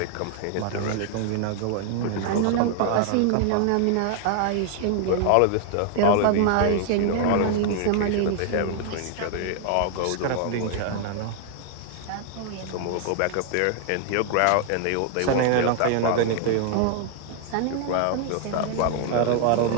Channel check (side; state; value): both; different; correlation 0.00